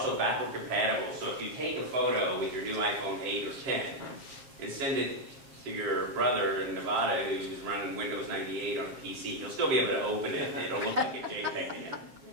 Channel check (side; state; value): left; late; 7.4 ms